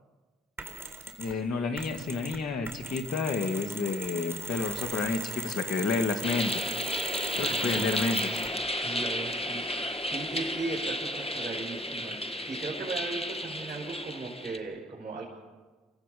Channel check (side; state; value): both; normal; correlation 0.56